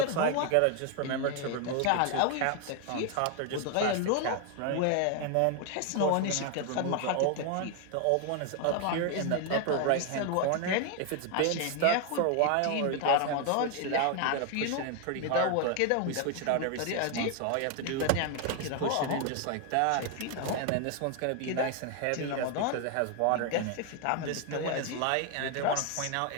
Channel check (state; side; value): different; both; correlation 0.01